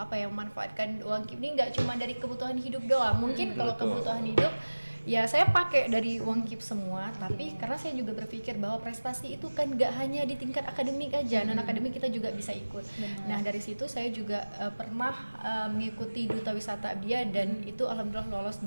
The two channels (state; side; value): inverted; both; correlation -1.00